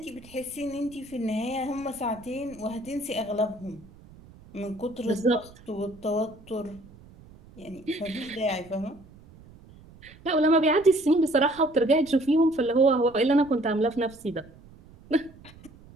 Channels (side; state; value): right; noise; rumble, 23 dB below the sound